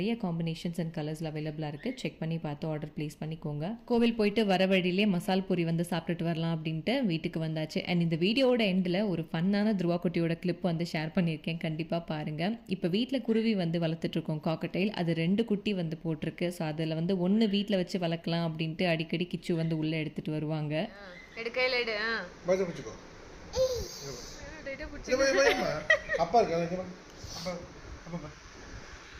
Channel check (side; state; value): both; identical; correlation 1.00